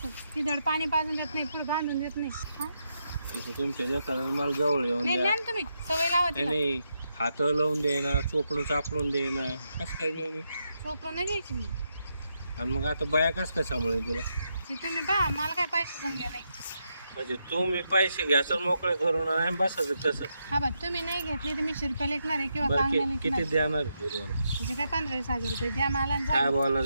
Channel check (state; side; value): inverted; both; correlation -0.82